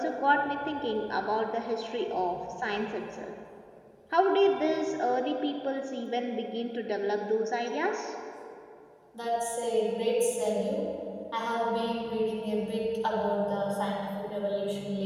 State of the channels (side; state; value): both; identical; correlation 1.00